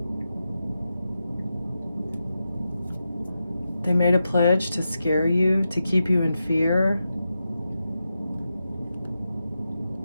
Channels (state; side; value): inverted; both; correlation -0.89